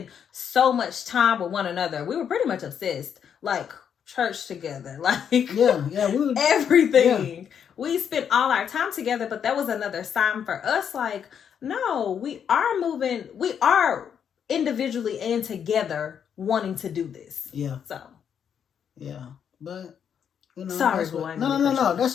so much time with one another. We were pretty much obsessed. Like, church together. Like, yeah, we would, everything. Yeah. We spent all our time together, but that was another sign for us, like, no, we are individually and together wanting to do this. Yeah. So. Yeah. But, sorry, boy. No.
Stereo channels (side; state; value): right; quieter; 8.0 dB